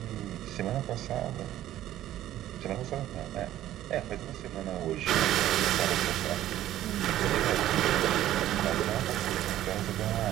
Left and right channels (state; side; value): quieter; left; 13.2 dB